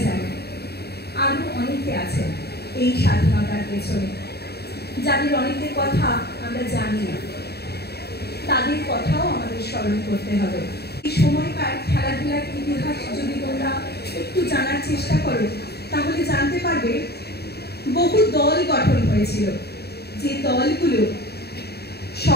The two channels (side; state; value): right; late; 0.47 ms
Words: জানি। আরো অনেকে আছেন এই স্বাধীনতার পেছনে, যাদের অনেকের কথা আমরা জানি না, তাদের কথাও আমাদের স্মরণ করতে হবে। এই সময়কার খেলাধুলার ইতিহাস যদি তোমরা একটু জানার চেষ্টা করো তাহলে জানতে পারবে বহু দল গঠন হয়েছিল, যে দলগুলো